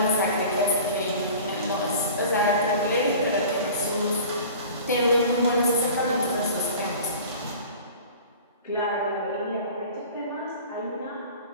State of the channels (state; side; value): inverted; both; correlation -0.41